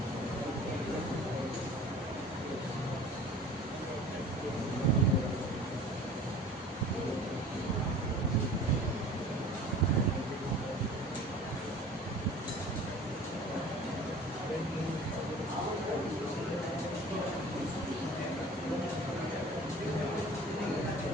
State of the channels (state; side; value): normal; both; correlation 0.43